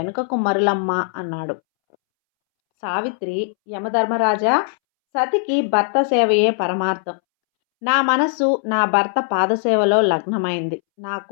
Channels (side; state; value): right; silent; 66 dB below the other